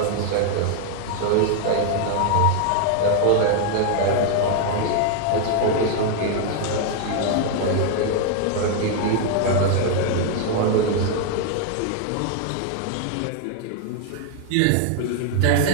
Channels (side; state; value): both; different; correlation 0.00